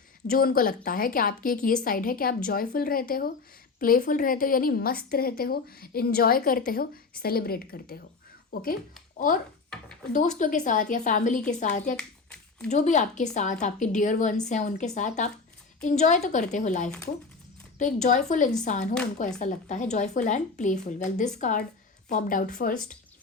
जो उनको लगता है कि आपकी एक ये साइड है कि आप जॉयफुल रहते हो, प्लेफुल रहते हो, यानी मस्त रहते हो, इंजॉय करते हो, सेलिब्रेट करते हो। ओके, और दोस्तों के साथ या फैमिली के साथ या जो भी आपके साथ आपके डियर वंस हैं उनके साथ आप इंजॉय तो करते हो लाइफ को। तो एक जॉयफुल इंसान हो, उनको ऐसा लगता है, joyful and playful. Well, this card popped out first.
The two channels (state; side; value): quieter; right; 4.4 dB